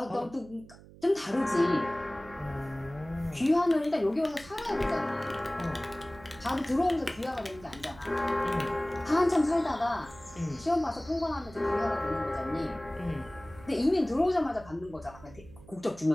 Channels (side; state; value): right; noise; hum, 20 dB below the sound